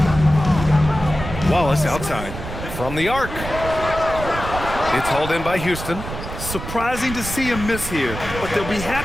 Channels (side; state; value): right; noise; rumble, 8 dB below the sound